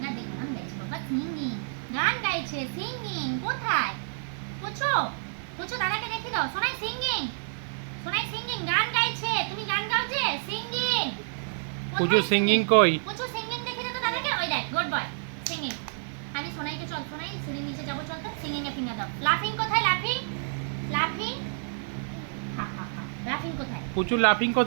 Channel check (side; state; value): left; silent; digital silence